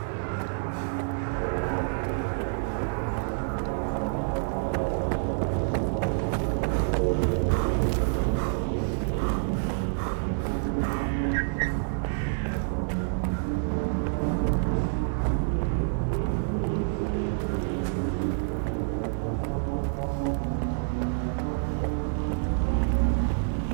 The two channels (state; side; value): silent; left; digital silence